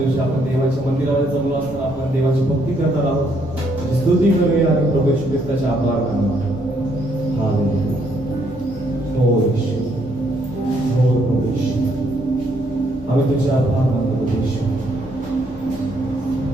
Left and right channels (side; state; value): both; normal; correlation 0.71